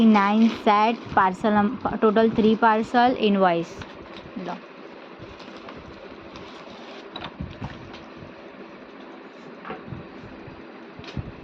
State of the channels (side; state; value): both; identical; correlation 1.00